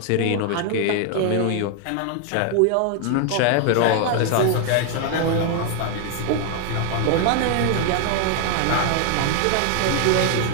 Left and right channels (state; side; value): different; both; correlation 0.00